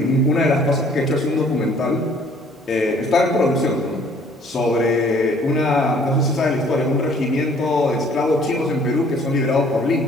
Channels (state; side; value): normal; both; correlation 0.58